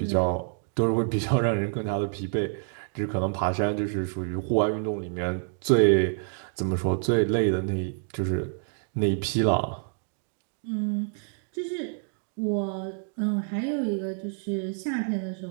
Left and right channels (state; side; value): silent; left; 60 dB below the other